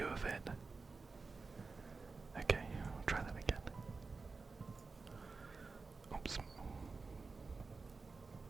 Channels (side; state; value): left; quieter; 4.2 dB